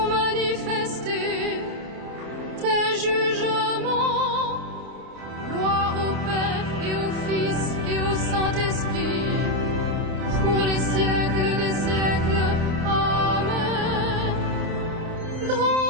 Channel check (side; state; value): left; late; 29 ms